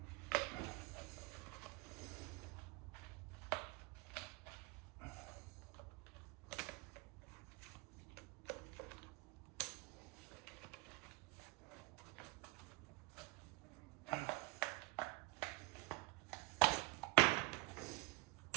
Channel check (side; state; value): left; quieter; 25.2 dB